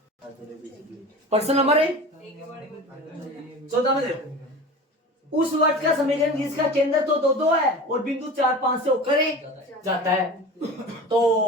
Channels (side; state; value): both; normal; correlation 0.34